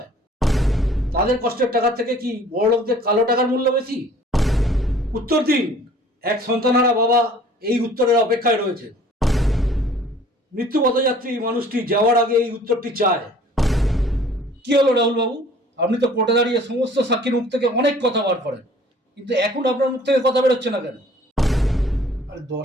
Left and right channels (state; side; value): normal; both; correlation 0.52